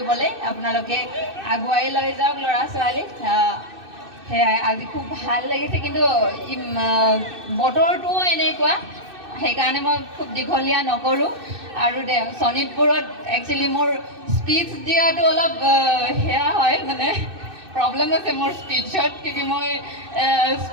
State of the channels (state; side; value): late; left; 2.6 ms